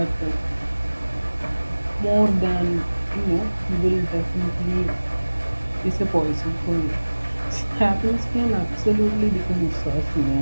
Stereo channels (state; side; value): inverted; both; correlation -1.00